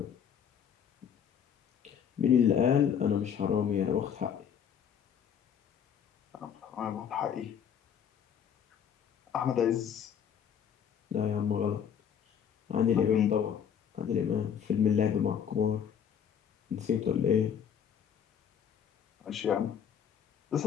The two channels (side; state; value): right; quieter; 8.2 dB